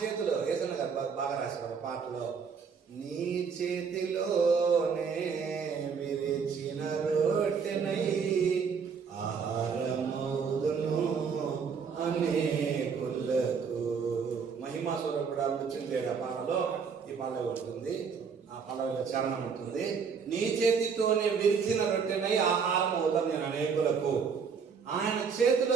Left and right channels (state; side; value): quieter; left; 6.0 dB